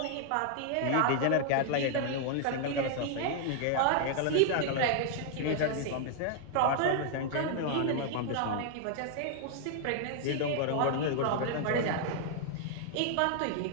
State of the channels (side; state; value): both; different; correlation 0.00